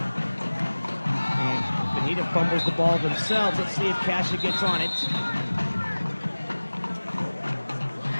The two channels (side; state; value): both; inverted; correlation -1.00